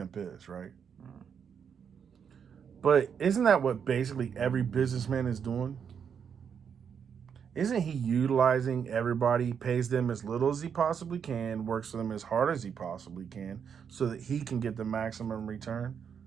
is, right? But isn't that what basically every businessman is doing? Isn't he utilizing everybody, pays them as little as he possibly can, works for them as hard as he possibly can, so that he can get the maximum return?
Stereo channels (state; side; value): quieter; left; 7.3 dB